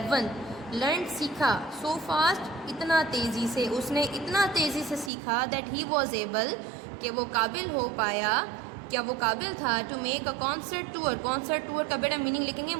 Learned سیکھا، so fast اتنا تیزی سے، اس نے اتنا تیزی سے سیکھا that he was able کہ وہ قابل ہو پایا، کیا وہ قابل تھا to make a concert tour. Concert tour کا بیٹا میننگ لکھیں گے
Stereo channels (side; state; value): left; drops out; at 5.1 s